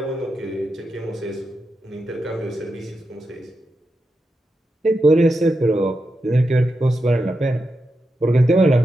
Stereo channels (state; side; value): normal; both; correlation 0.87